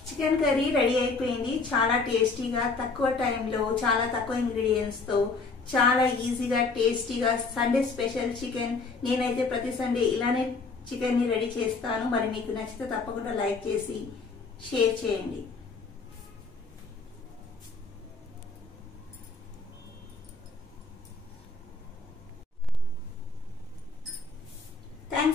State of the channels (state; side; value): quieter; right; 4.1 dB